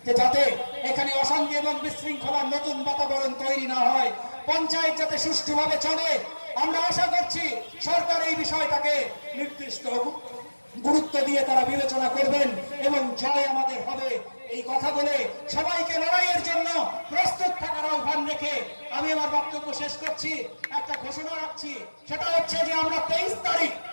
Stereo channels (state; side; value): inverted; both; correlation -1.00